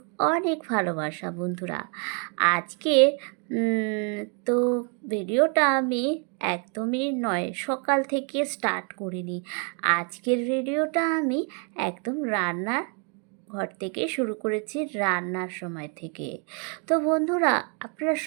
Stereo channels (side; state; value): left; quieter; 38.0 dB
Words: অনেক ভালোবাসা বন্ধুরা। আজকে তো ভিডিওটা আমি একদমই নয় সকাল থেকে স্টার্ট করিনি। আজকের ভিডিওটা আমি একদম রান্নার ঘর থেকে শুরু করেছি, রান্নার সময় থেকে। তো বন্ধুরা, আপনারা